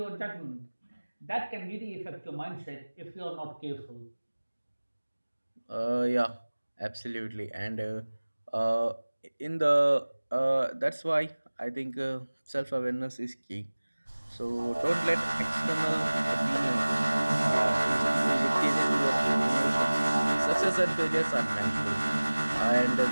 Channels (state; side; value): inverted; both; correlation -1.00